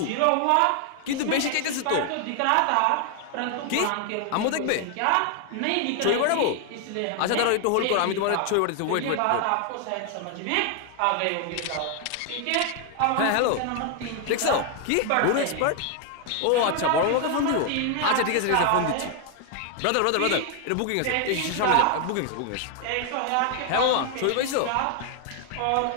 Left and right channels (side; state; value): both; different; correlation 0.00